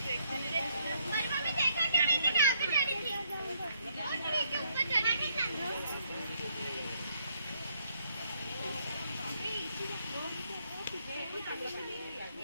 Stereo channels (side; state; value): both; inverted; correlation -0.70